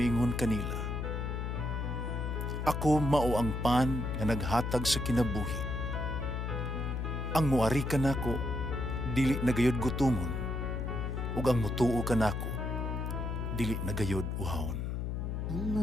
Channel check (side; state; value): left; noise; hum, 2 dB below the sound